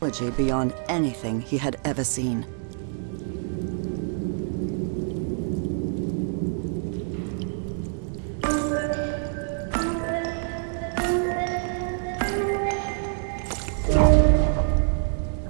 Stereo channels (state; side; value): silent; left; 60 dB below the other